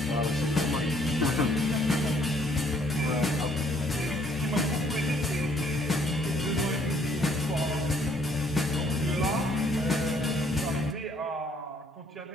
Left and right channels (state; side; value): normal; both; correlation 0.64